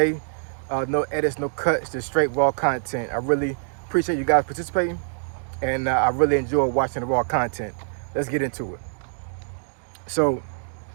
No edits, no cuts, just straight raw content. I really appreciate you guys participating, and I really enjoy watching the raw content. Let's get into it. So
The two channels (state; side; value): silent; left; digital silence